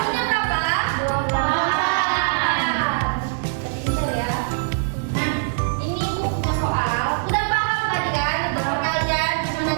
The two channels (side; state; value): left; silent; 55 dB below the other